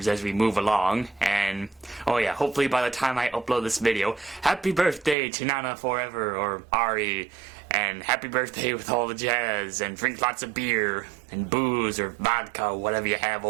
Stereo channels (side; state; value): left; drops out; at 5.2 s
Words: as we move along, and oh yeah, hopefully by the time I upload this video, happy birthday to Nana Forever, or Ari, and happy birthday with all the jazz, and drink lots of beer, and booze, or vodka, whatever you have